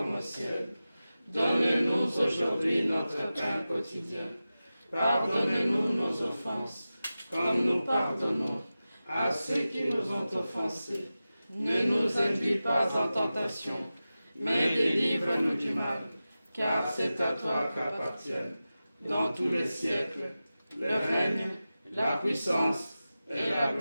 au ciel. Donne-nous aujourd'hui notre pain quotidien. Pardonne-nous nos offenses, comme nous pardonnons à ceux qui nous ont offensés. Ne nous induis pas en tentation, mais délivre-nous du mal, car c'est à toi qu'appartiennent, dans tous les siècles, le règne, la puissance et la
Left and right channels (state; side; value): inverted; both; correlation -0.94